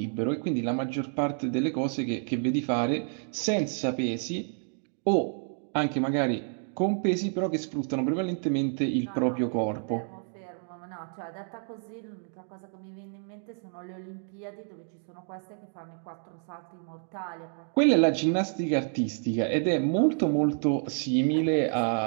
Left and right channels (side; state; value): left; silent; 58 dB below the other